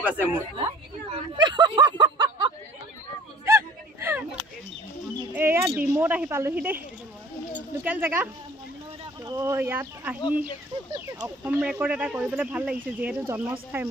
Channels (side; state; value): both; normal; correlation 0.50